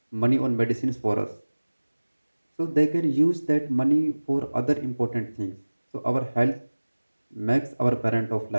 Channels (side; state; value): both; inverted; correlation -1.00